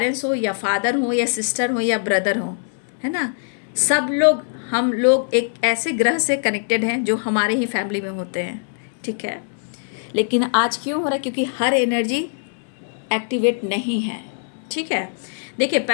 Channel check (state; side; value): silent; right; 64 dB below the other